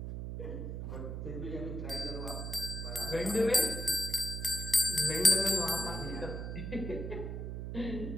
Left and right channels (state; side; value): noise; right; hum, 5 dB below the sound